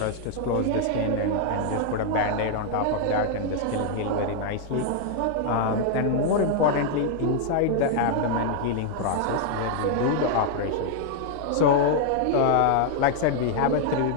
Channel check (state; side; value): different; both; correlation 0.00